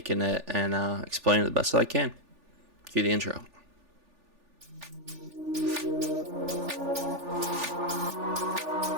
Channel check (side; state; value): left; late; 3.4 ms